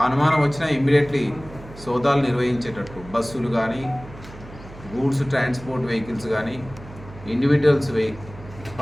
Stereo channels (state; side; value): noise; right; hum, 17 dB below the sound